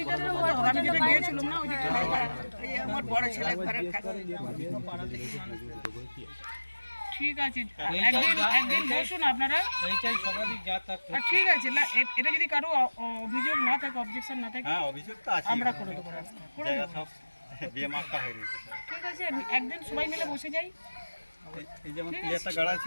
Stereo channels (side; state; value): both; inverted; correlation -1.00